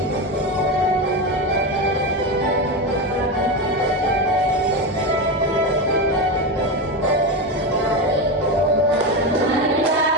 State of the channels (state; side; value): normal; both; correlation 0.15